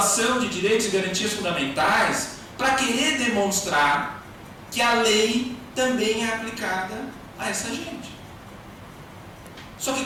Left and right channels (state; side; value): identical; both; correlation 1.00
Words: de direitos e garantias fundamentais, para querer demonstrar que a lei também é aplicada a essa gente. Só que